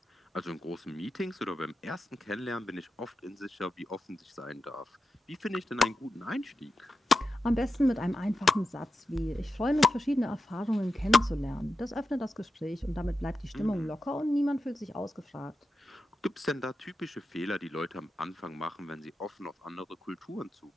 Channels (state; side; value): normal; both; correlation 0.90